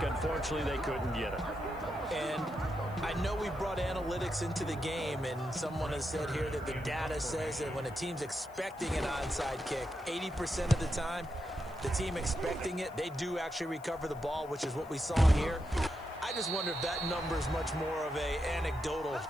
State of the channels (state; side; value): noise; left; hiss, 26 dB below the sound